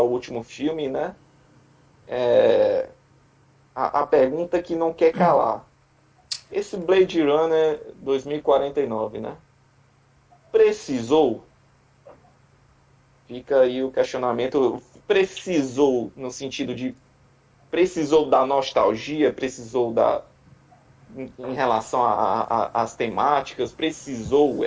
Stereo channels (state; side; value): identical; both; correlation 1.00